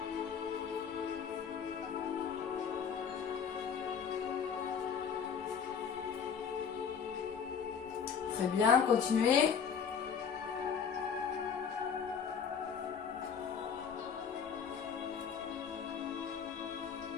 Très bien, continuez.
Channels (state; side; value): quieter; right; 6.9 dB